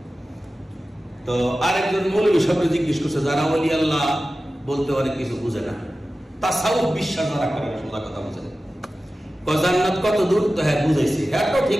তো আরেকজন মৌলবী সাহেব জিজ্ঞেস করছে, যারা ওলি আল্লাহ বলতে অনেক কিছু বুঝে না, তাসাউফ বিশ্বাস যারা করে, সোজা কথা বুঝে না, জান্নাত কত দূর? তো হ্যাঁ বুঝাইছি, হ্যাঁ তো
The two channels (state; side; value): normal; both; correlation 0.95